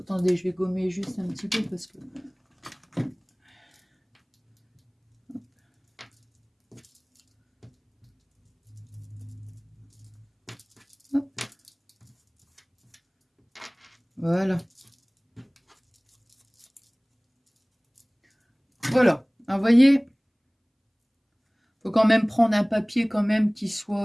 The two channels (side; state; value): both; identical; correlation 1.00